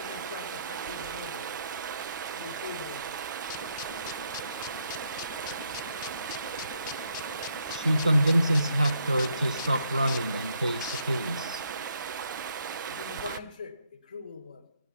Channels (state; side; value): inverted; both; correlation -0.74